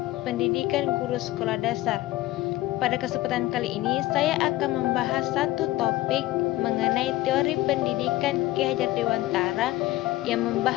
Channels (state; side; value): quieter; right; 17.2 dB